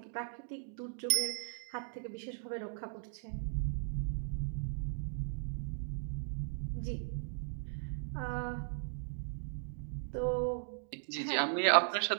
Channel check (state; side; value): silent; left; digital silence